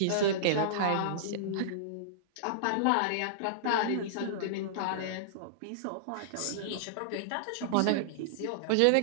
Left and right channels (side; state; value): both; different; correlation -0.02